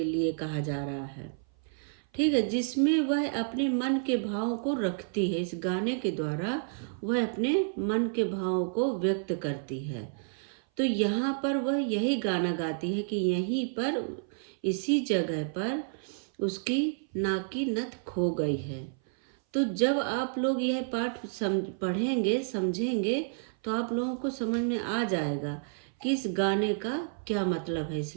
कहा जा रहा है। ठीक है, जिसमें वह अपने मन के भावों को रखती है। इस गाने के द्वारा वह अपने मन के भावों को व्यक्त करती है। तो यहाँ पर वह यही गाना गाती है कि यहीं पर इसी जगह पर उसकी नाक की नथ खो गई है। तो जब आप लोग यह पाठ पढ़ेंगे समझेंगे तो आप लोगों को समझ में आ जाएगा कि इस गाने का क्या मतलब है इस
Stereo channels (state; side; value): silent; left; 56 dB below the other